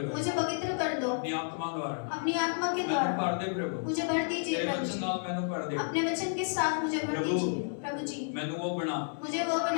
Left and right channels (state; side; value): silent; right; 57 dB below the other